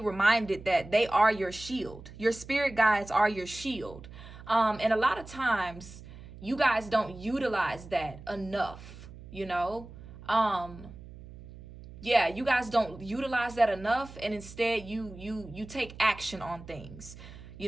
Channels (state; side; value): noise; right; hum, 16 dB below the sound